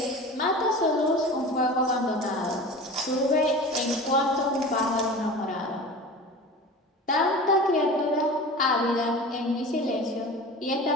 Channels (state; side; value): normal; both; correlation 0.35